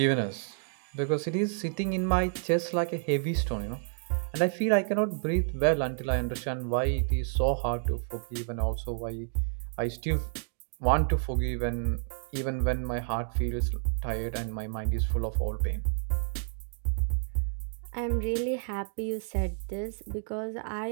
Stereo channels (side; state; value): left; silent; 58 dB below the other